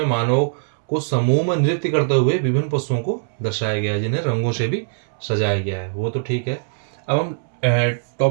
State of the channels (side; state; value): left; silent; 65 dB below the other